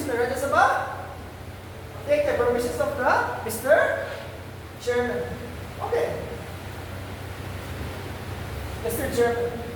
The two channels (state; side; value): identical; both; correlation 1.00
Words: the Rajya Sabha, take the permissions of the Mr. Chairman. Okay. Mr. Chairman.